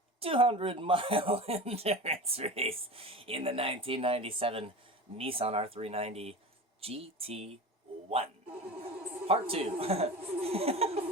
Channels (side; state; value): both; normal; correlation 0.31